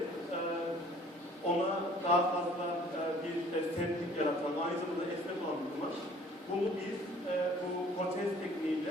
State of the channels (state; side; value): normal; both; correlation 0.54